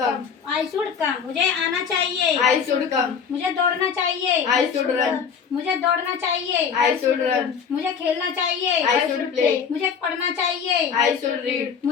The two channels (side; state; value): right; quieter; 6.8 dB